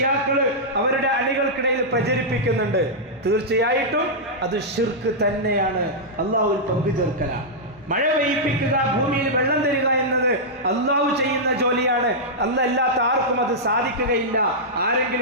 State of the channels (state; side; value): normal; both; correlation -0.09